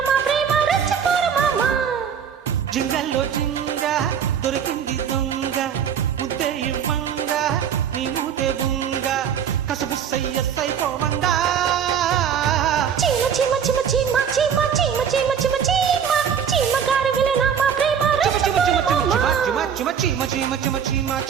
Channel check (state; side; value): quieter; left; 7.8 dB